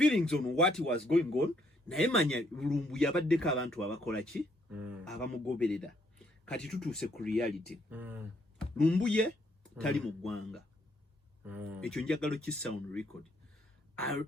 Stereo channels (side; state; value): both; normal; correlation 0.70